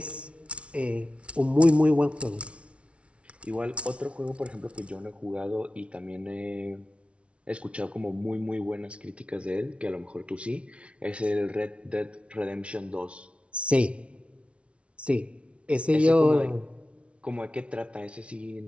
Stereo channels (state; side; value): late; left; 0.061 ms